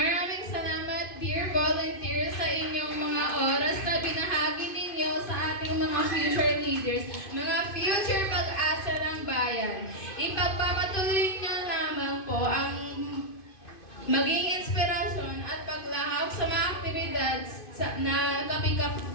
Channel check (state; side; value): late; right; 2.5 ms